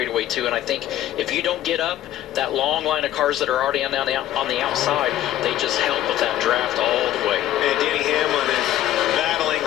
too. And I think if you don't get up, that long line of cars that are already on the outside, they just help with that draft all the way. And Denny Hamlin is battling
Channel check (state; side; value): quieter; right; 13.0 dB